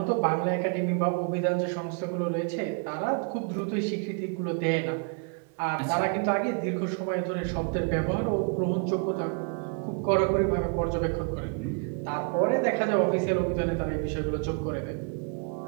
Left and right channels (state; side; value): quieter; left; 39.6 dB